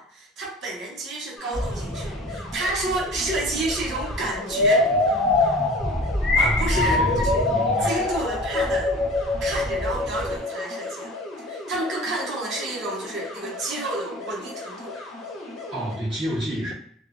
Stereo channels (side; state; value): both; normal; correlation 0.41